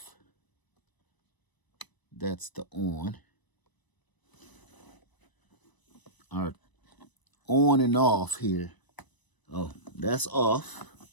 That's the on. Our on and off here. Oh, that's off.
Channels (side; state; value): right; late; 1.0 ms